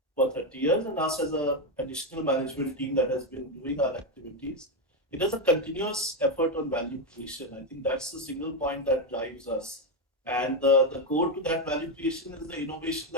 for 30 years, and us as a additional management team that has been doing our activities. It is a continuous effort on value creation. I think that's the single point that drives us. And the core to that value creation is the innovation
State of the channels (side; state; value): both; normal; correlation 0.07